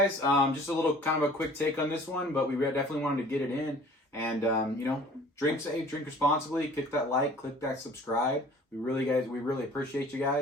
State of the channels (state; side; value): normal; both; correlation 0.49